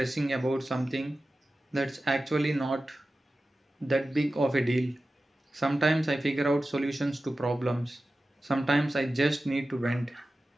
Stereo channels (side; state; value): both; normal; correlation 0.94